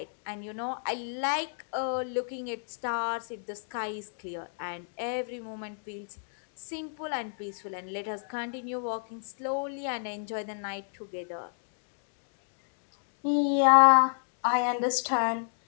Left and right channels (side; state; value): right; silent; digital silence